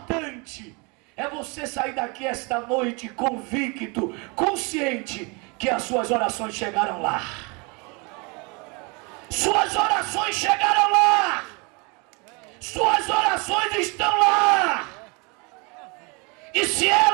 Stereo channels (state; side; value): quieter; left; 30.2 dB